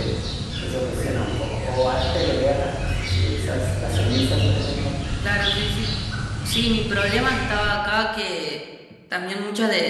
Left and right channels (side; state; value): both; identical; correlation 1.00